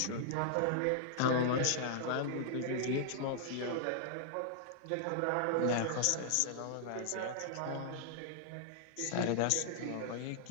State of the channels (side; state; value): both; different; correlation -0.01